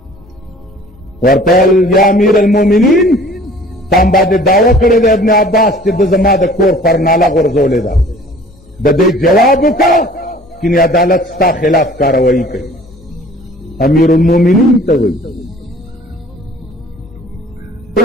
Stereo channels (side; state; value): both; normal; correlation 0.50